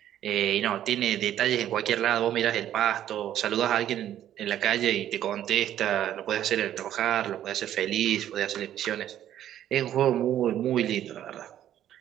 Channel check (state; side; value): quieter; left; 11.4 dB